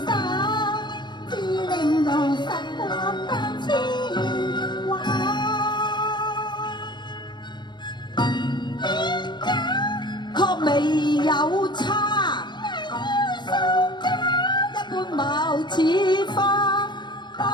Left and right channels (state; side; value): late; right; 0.21 ms